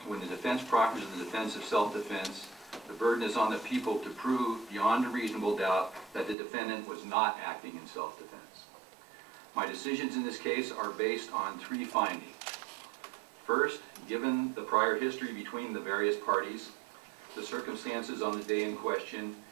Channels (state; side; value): drops out; left; at 6.4 s